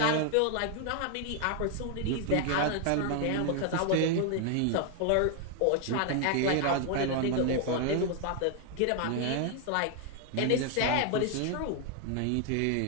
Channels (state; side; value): different; both; correlation 0.00